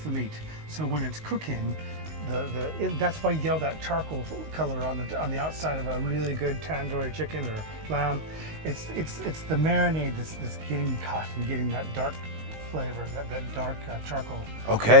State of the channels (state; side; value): late; left; 19 ms